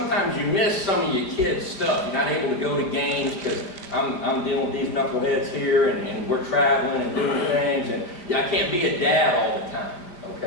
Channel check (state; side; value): late; right; 5.1 ms